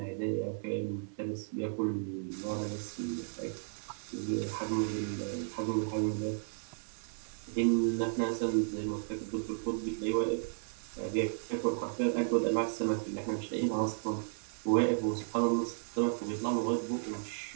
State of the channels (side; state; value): left; silent; 55 dB below the other